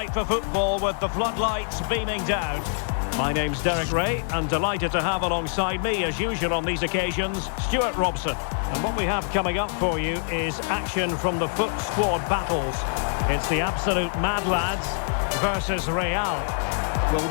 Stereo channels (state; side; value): silent; right; digital silence